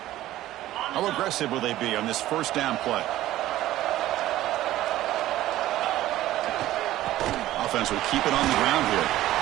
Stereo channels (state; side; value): quieter; left; 14.8 dB